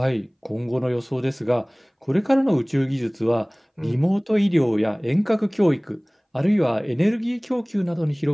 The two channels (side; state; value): both; identical; correlation 1.00